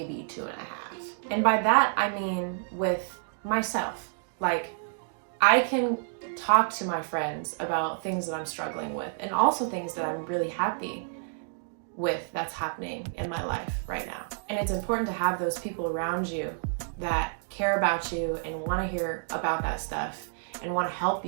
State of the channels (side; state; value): left; silent; digital silence